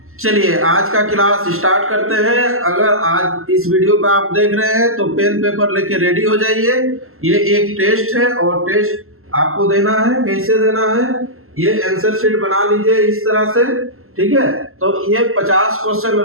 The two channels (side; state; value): left; late; 0.62 ms